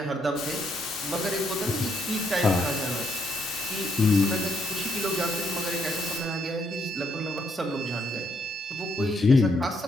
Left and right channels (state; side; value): normal; both; correlation 0.74